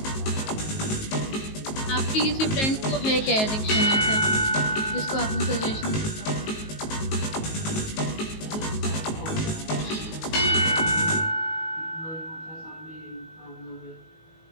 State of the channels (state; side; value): late; right; 19 ms